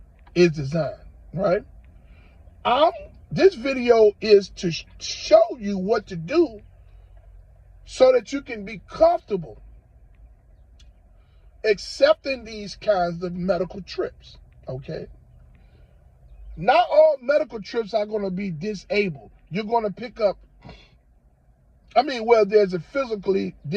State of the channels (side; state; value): both; identical; correlation 1.00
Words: is designed, right? This video is to show you what to do so that you can be comfortable accepting these kinds of medical trips, okay? Not all medical trips are going to be disabled. You're going to pick up, there's a physically